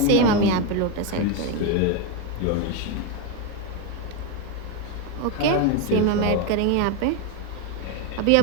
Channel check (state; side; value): different; both; correlation 0.03